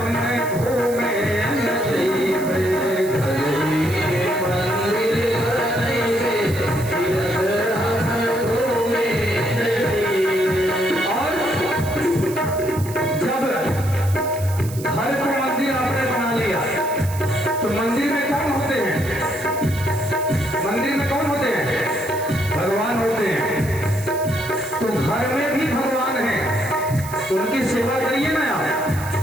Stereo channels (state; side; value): noise; right; hiss, 14 dB below the sound